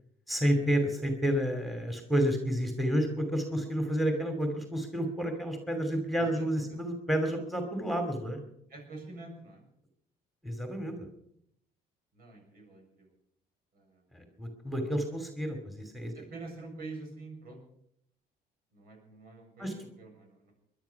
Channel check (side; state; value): both; normal; correlation 0.80